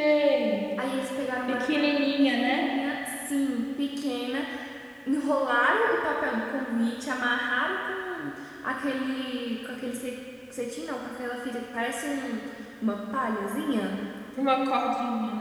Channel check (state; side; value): identical; both; correlation 1.00